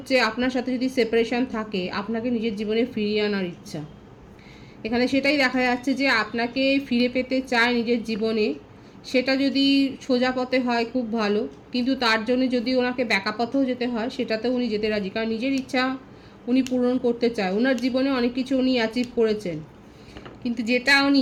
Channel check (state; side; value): identical; both; correlation 1.00